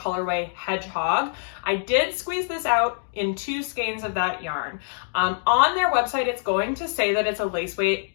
Hedgehog. I did squeeze this out in 2 skeins of that yarn. On their website, it's going to say that it's a lace weight.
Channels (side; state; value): right; silent; digital silence